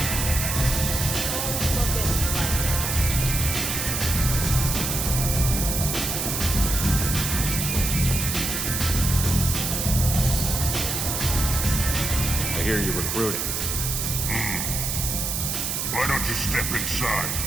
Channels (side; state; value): right; noise; hiss, 1 dB below the sound